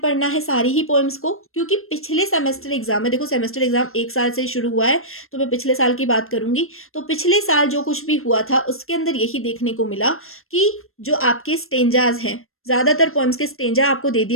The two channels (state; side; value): late; right; 0.62 ms